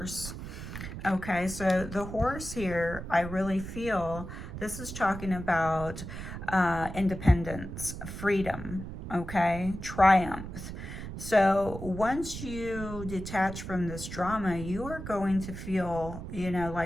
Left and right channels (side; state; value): right; noise; rumble, 9 dB below the sound